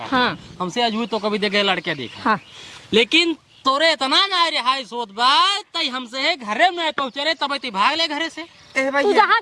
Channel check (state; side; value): identical; both; correlation 1.00